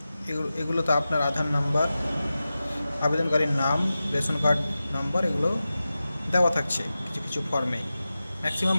এগুলোতে আপনার আধার নাম্বার, আবেদনকারীর নাম, রেশন কার্ড নাম্বার এগুলো দেওয়া থাকছে কিছু কিছু ফর্মে, ম্যাক্সিমাম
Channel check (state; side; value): inverted; both; correlation -0.94